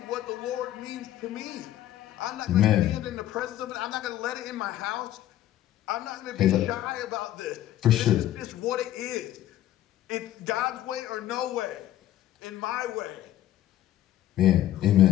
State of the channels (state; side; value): quieter; right; 13.0 dB